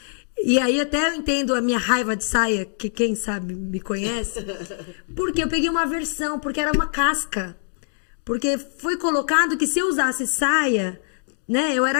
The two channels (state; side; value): silent; right; 63 dB below the other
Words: E aí até eu entendo a minha raiva de saia, que quem sabe me conhece, porque eu peguei uma aversão, porque era uma casca. Porque foi colocado que se eu usasse saia, né, eu